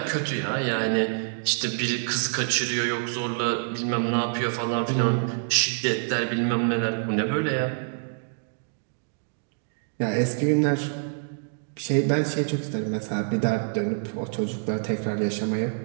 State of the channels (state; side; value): silent; left; digital silence